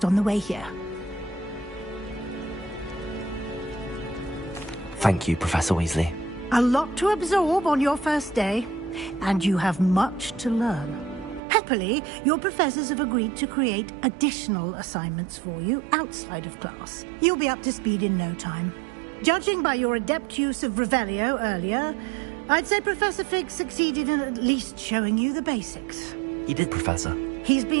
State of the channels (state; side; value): drops out; left; at 11.4 s